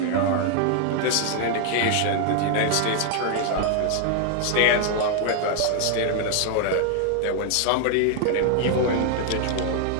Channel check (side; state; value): both; different; correlation 0.00